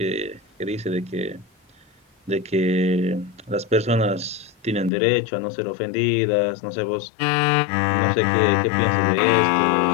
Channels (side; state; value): right; drops out; at 4.9 s